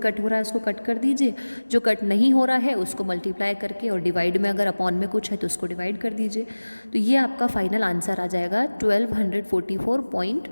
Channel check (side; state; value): both; inverted; correlation -1.00